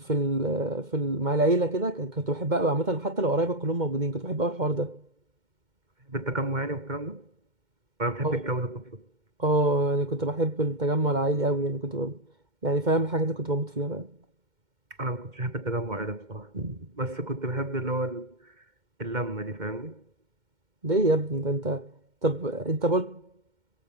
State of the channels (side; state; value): left; late; 2.1 ms